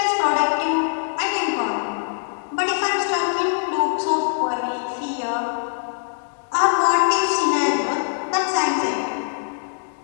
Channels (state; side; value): silent; right; digital silence